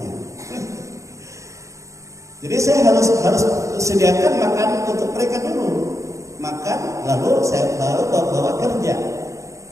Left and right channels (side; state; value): left; late; 0.15 ms